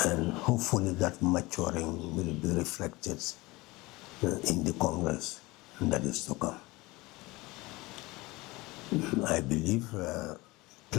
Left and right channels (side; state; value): right; quieter; 21.9 dB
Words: and hopefully that maturing will be reflected in the Congress that is to come. I believe